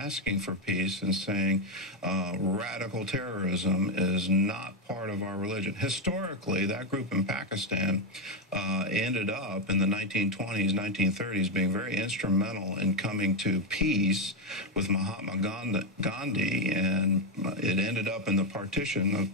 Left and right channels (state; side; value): normal; both; correlation 0.06